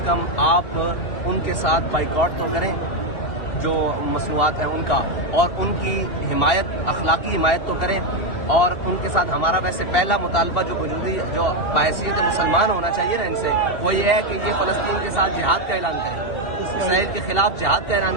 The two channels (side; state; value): right; late; 2.8 ms